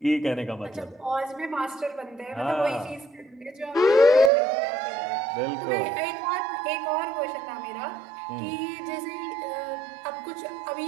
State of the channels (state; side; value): drops out; left; at 4.3 s